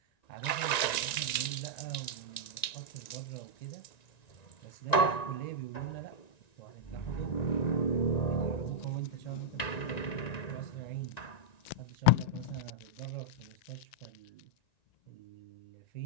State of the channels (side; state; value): right; late; 1.9 ms